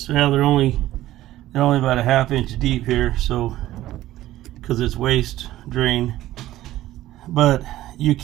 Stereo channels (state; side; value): quieter; left; 14.9 dB